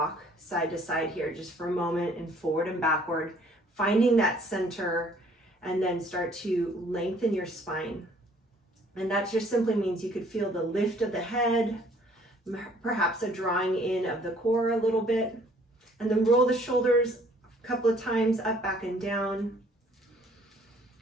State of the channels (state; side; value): normal; both; correlation 0.59